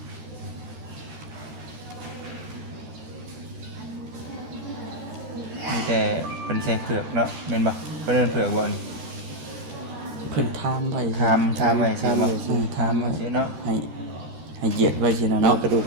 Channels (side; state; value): left; late; 14 ms